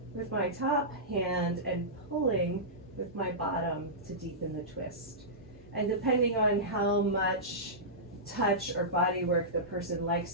with my top hand and pulling with my bottom to deepen the twist. And depending on how much touch or body work the person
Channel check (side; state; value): both; normal; correlation -0.16